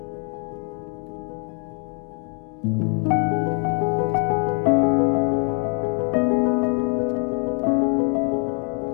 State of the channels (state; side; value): quieter; right; 39.6 dB